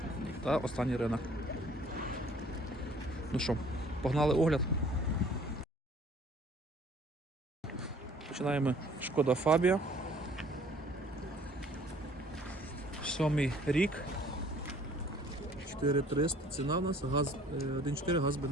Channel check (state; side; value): normal; both; correlation 0.55